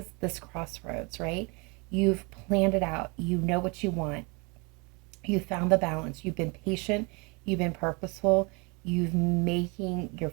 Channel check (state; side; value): quieter; left; 29.6 dB